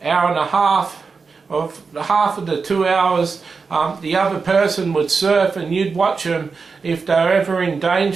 and a half of the 2 hours, the other person would surf, and you'd watch them. If they were ever in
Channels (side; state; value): left; quieter; 4.9 dB